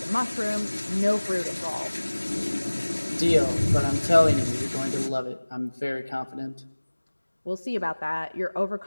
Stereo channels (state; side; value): inverted; both; correlation -1.00